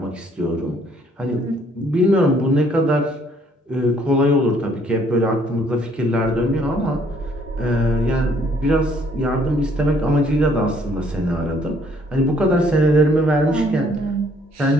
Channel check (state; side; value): normal; both; correlation 0.64